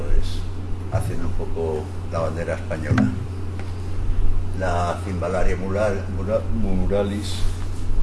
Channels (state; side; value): identical; both; correlation 1.00